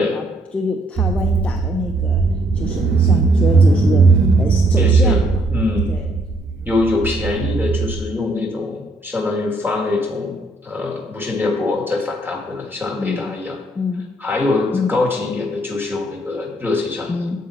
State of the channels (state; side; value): normal; both; correlation 0.69